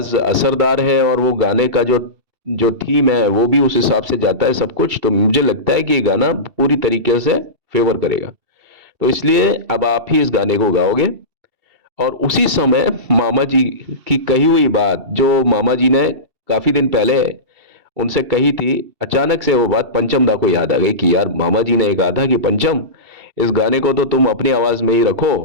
असरदार है और वो गाने का जो जो थीम है वो भी उस हिसाब से जाता है सब कुछ। तो मुझे लगता है कि ये गाना पूरी तरीके से फेवर करेगा। तो इसलिए अब आप ही इस गाने को गाओगे। और उसी समय मामा जी की कही हुई बात, जो मामा जी ने काफी दिन पहले उनसे कही थी, अचानक से वो बात पंचम दा को याद आ गई कि यार मामा जी ने कहा था कि पंचम, इस गाने को तो तुम अपनी आवाज में ही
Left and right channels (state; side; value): late; left; 2.7 ms